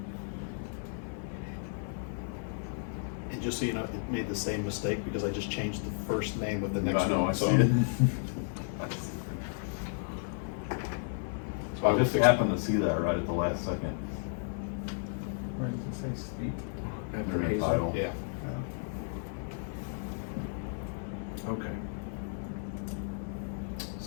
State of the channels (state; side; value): silent; right; 56 dB below the other